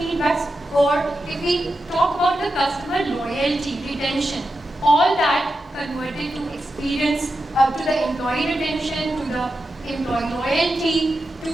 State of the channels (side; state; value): both; normal; correlation 0.89